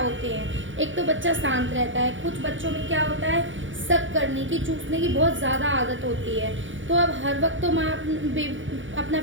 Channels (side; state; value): left; late; 0.56 ms